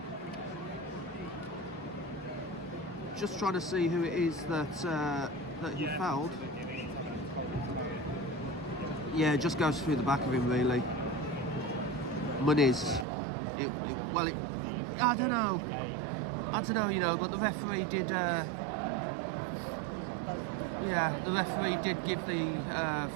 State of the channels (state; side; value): drops out; left; at 13.1 s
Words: Just trying to see who it is that he fouled. Yeah, it just goes through the back of him, really. Molineux. I don't know, you know, but the referee did. The referee did give the